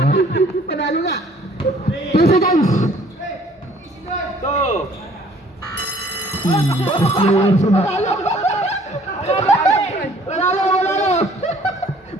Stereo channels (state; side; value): normal; both; correlation 0.57